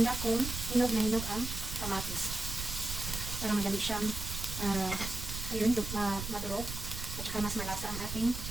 kung hinog na hinog ang kamatis para madali siyang ayun, madurog at saka mas malasa ang ating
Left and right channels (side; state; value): right; noise; rumble, 6 dB below the sound